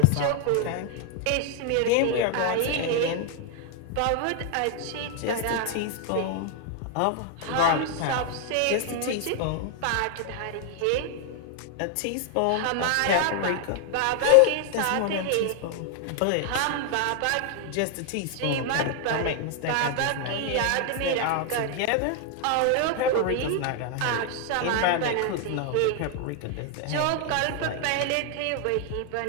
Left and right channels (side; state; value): both; different; correlation 0.00